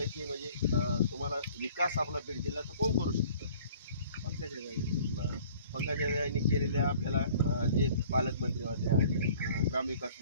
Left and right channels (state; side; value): inverted; both; correlation -0.52